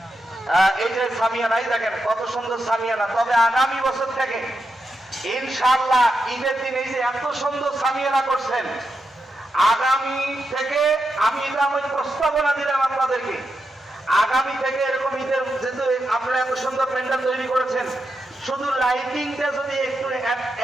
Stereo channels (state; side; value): normal; both; correlation 0.86